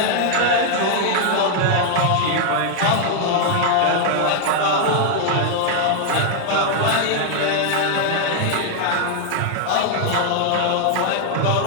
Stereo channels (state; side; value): different; both; correlation 0.00